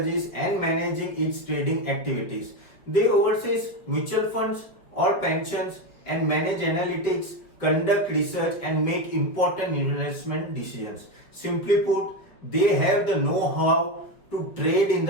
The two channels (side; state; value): right; late; 5.0 ms